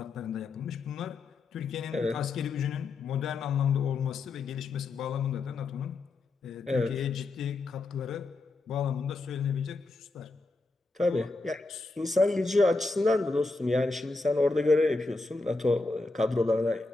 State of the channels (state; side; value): quieter; right; 3.4 dB